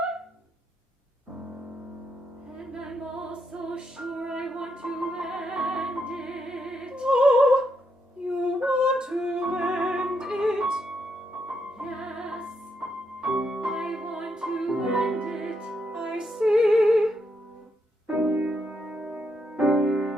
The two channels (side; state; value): both; normal; correlation 0.79